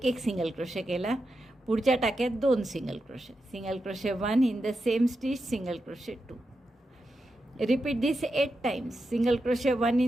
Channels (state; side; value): normal; both; correlation 0.88